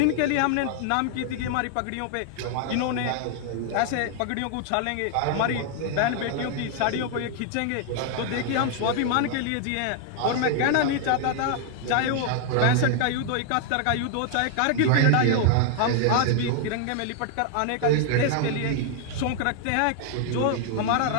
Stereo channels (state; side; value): different; both; correlation 0.00